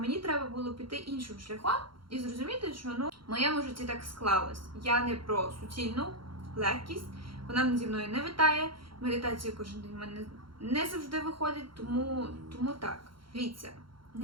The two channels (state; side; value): late; left; 0.73 ms